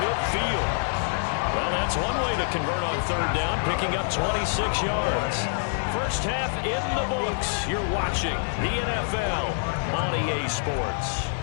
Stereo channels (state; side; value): silent; right; digital silence